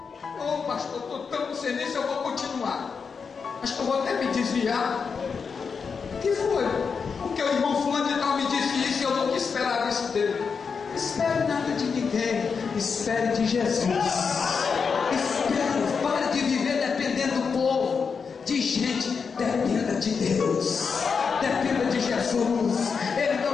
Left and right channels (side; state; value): right; quieter; 5.7 dB